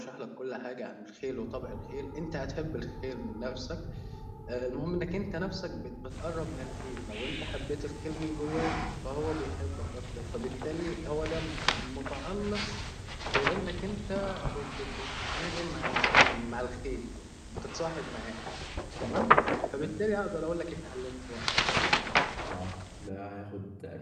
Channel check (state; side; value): identical; both; correlation 1.00